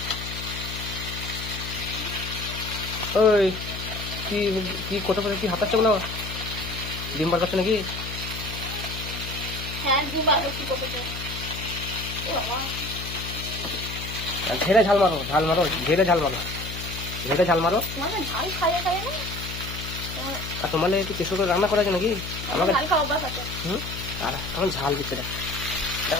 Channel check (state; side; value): noise; left; hum, 8 dB below the sound